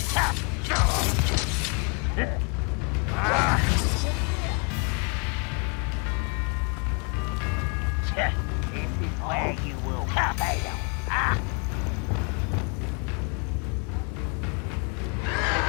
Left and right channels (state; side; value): quieter; right; 34.9 dB